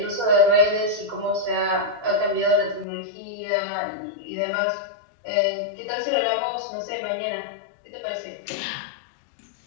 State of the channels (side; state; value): right; drops out; at 2.9 s